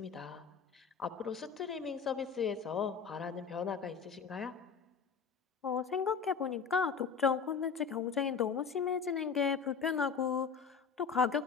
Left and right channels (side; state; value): right; quieter; 6.1 dB